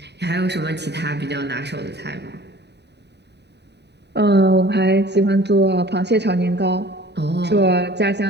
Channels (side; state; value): left; late; 0.50 ms